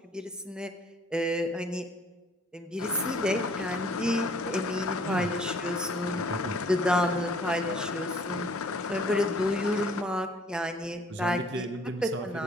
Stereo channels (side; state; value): both; normal; correlation 0.57